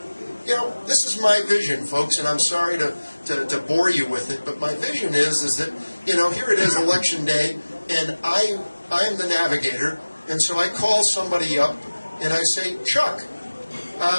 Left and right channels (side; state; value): both; inverted; correlation -1.00